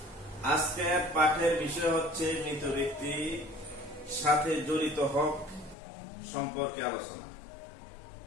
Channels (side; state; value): right; drops out; at 5.8 s